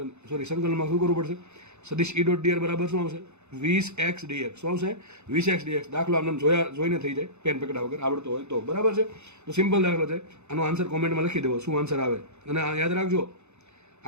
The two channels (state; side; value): late; left; 0.82 ms